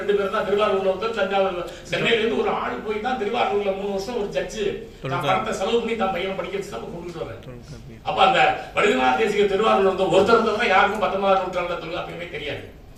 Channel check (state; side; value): identical; both; correlation 1.00